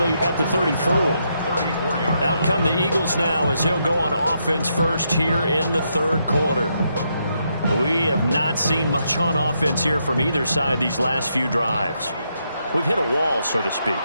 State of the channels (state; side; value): inverted; both; correlation -0.79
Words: at the 34. Out come the Eagles now as he'll go on offense first here in the third quarter. We have not seen much on offense here from either side these last few drives. We've hit a wall, so to speak.